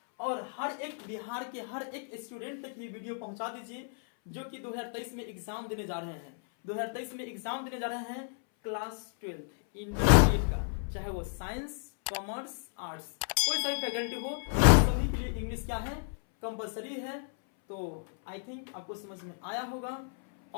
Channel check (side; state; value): right; silent; 56 dB below the other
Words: और हर एक बिहार के हर एक स्टूडेंट तक ये वीडियो पहुंचा दीजिए जो कि 2023 में एग्जाम देने जा रहे हैं। 2023 में एग्जाम देने जा रहे हैं क्लास 12 इंटरमीडिएट का, चाहे वो साइंस, कॉमर्स, आर्ट्स, कोई सा भी फैकल्टी हो, सभी के लिए इंग्लिश क्या है? कंपलसरी है। तो आई थिंक आपको समझ में आया होगा।